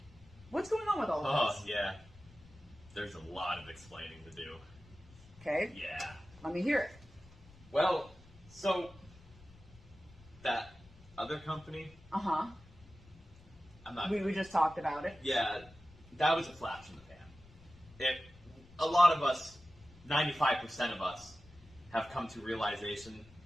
going on with all of this? Oh, yeah. There's a lot of explaining to do. Okay. Yeah. Let me hear it. Well, so that other company, Uh-huh. I'm not... We just talked about it. Yeah, that was a flash in the pan. A lot of us, 95% of us, have come to realization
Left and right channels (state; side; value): noise; left; rumble, 23 dB below the sound